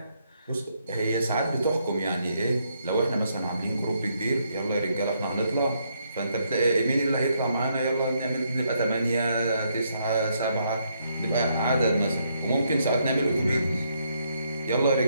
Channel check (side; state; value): both; inverted; correlation -0.75